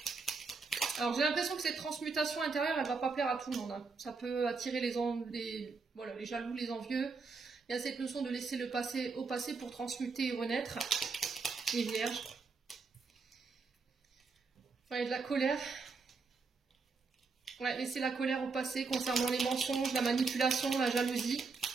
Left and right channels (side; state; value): left; quieter; 4.5 dB